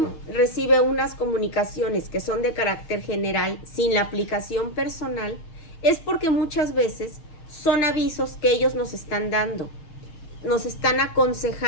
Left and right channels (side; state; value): right; late; 6.6 ms